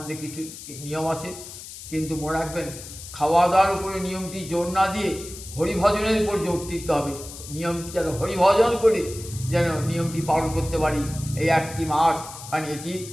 কিছু নিয়ম আছে, কিন্তু মনে রাখবেন খাওয়া দাওয়ার উপরে নিয়মটি জোর না দিয়ে হরিভজনের উপর জোর দিতে হবে। নিয়মটি যেন হরিভজন করে যেন নিয়মটি পালন করতে পারি এই একটি মাস। কারণ এটি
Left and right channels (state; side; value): noise; left; hiss, 13 dB below the sound